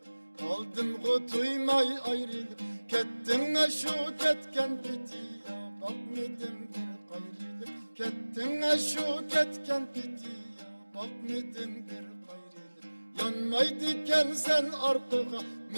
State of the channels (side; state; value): both; inverted; correlation -1.00